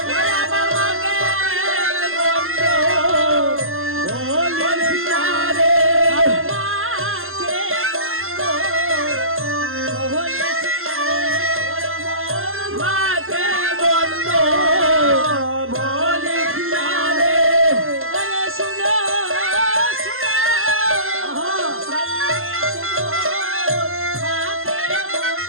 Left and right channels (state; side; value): late; left; 0.61 ms